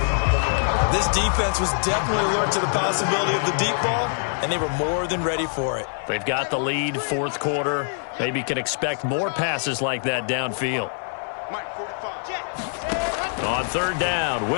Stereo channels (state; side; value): silent; right; 63 dB below the other